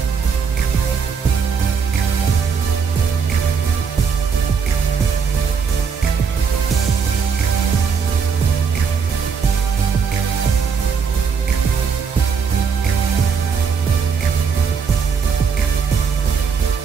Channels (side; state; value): left; quieter; 6.1 dB